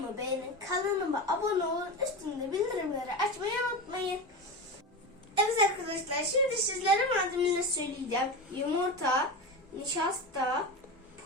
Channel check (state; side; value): normal; both; correlation 0.22